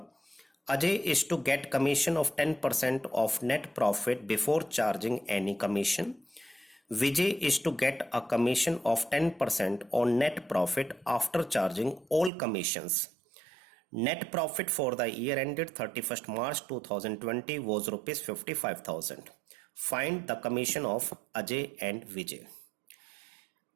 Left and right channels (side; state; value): left; drops out; at 12.3 s